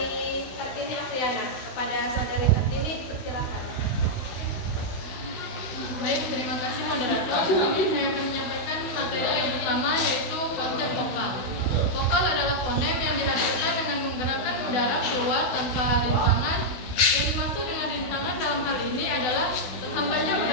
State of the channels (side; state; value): right; late; 16 ms